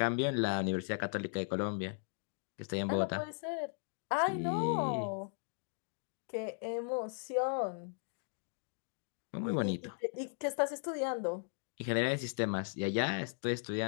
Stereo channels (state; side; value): silent; right; digital silence